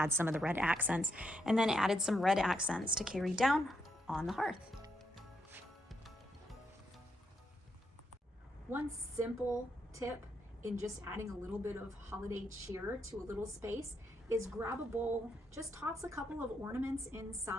some of the red accents, and then added some red accents to carry down on the hearth. One simple tip in just adding a little bit of holiday cheer to a little space is grab a bowl, just toss a couple of ornaments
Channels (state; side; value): normal; both; correlation 0.79